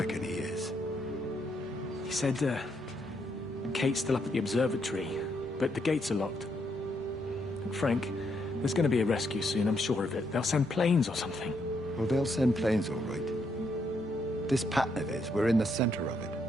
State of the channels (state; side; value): normal; both; correlation 0.76